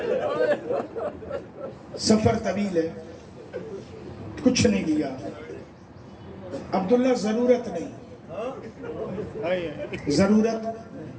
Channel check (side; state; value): both; identical; correlation 1.00